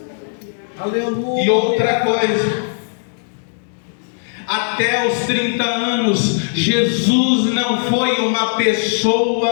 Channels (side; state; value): right; silent; 67 dB below the other